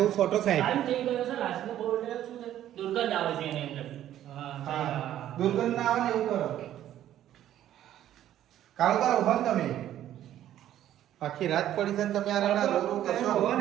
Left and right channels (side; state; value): left; quieter; 12.0 dB